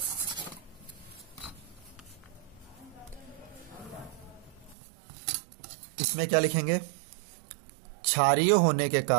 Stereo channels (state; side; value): drops out; left; at 4.8 s